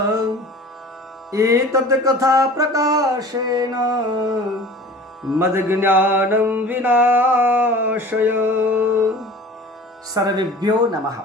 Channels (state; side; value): normal; both; correlation 0.42